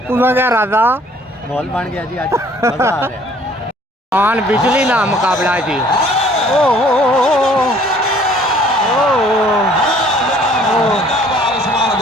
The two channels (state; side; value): normal; both; correlation 0.57